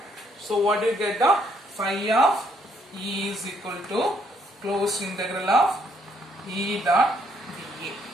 So what do you get? Phi of E is equal to closed integral of E dot dA.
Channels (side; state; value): both; normal; correlation 0.69